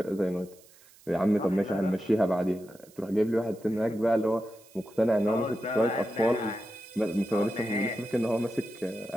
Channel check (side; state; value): right; noise; hiss, 26 dB below the sound